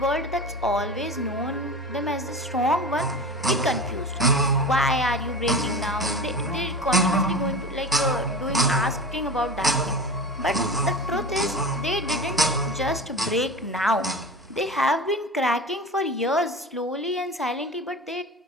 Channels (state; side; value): normal; both; correlation 0.31